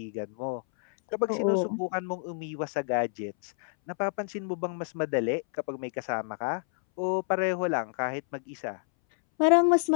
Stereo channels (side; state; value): right; silent; 59 dB below the other